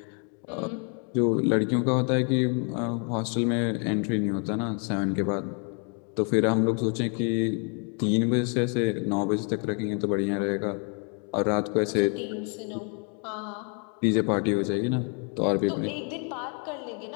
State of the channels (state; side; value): quieter; right; 39.3 dB